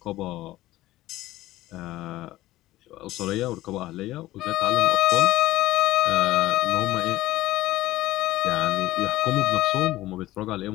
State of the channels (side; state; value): right; quieter; 16.4 dB